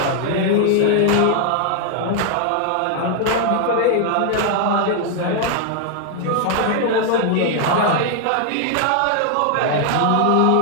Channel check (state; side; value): different; both; correlation 0.00